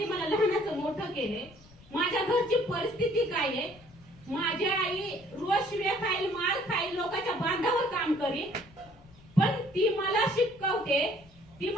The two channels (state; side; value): noise; left; rumble, 25 dB below the sound